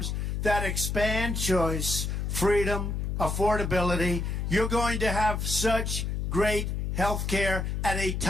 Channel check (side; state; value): left; noise; hum, 1 dB below the sound